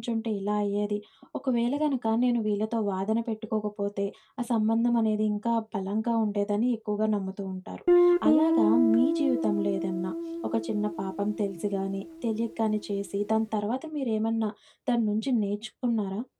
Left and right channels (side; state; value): both; identical; correlation 1.00